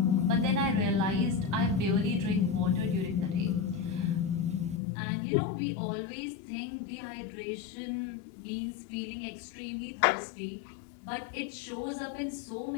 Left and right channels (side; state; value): right; drops out; at 4.8 s